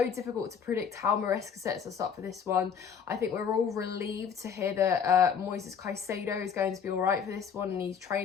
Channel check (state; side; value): quieter; right; 7.0 dB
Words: difficult to predict how Maresca sets us up for this one. I think we're all relieved to hear that Moises Caicedo is going to be all right for this one and he's